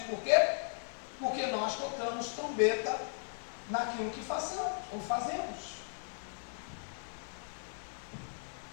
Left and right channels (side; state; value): right; silent; digital silence